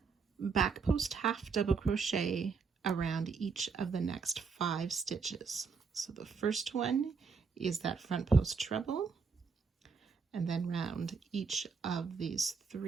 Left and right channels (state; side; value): quieter; left; 5.2 dB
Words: Back post half double crochet around each of the next 5 stitches. So the first one is that front post treble, and then round each of these